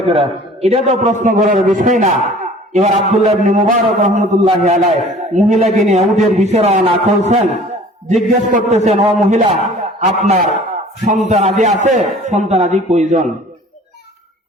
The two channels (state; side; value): normal; both; correlation 0.48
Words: করে, এটা তো প্রশ্ন করার বিষয় না। এবার আব্দুল্লাহ ইবনে মুবারক রহমতুল্লাহি আলাইহি মহিলাকে নিয়ে উটের বিষয় রওনা করছেন। জিজ্ঞেস করতেছেন, ও মহিলা, আপনার সন্তানাদি আছে? সন্তানাদি কয়জন?